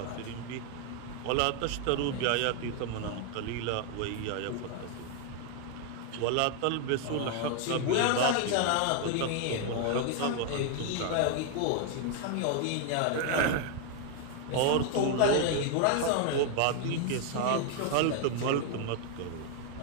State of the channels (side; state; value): both; different; correlation 0.00